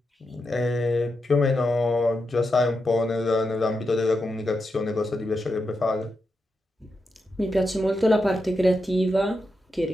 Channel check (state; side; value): normal; both; correlation 0.87